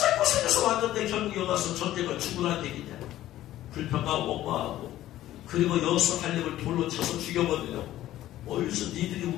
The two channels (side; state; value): right; quieter; 14.0 dB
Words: 왔는데 결국 여기 와서 전쟁을 죽으라는 얘기냐. 불평하고 원망하고 그리고 여호수아 갈렙을 돌로 쳐서 죽여버리려고. 어디서 니들이